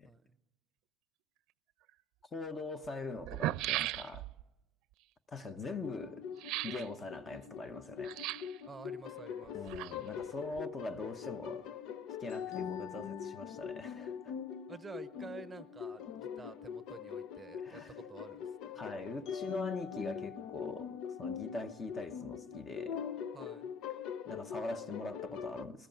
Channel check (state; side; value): normal; both; correlation 0.48